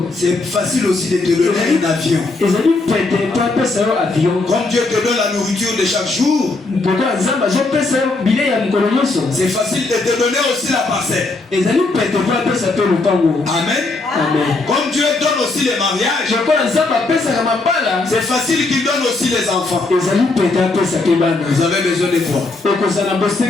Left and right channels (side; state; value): right; quieter; 3.4 dB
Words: c'est facile aussi de te donner un avion. Comme Dieu te donne la nourriture de chaque jour, c'est facile de te donner aussi la parcelle. Amen. Comme Dieu donne aussi les mariages, c'est facile qu'il donne aussi les enfants. Vous avez besoin de quoi?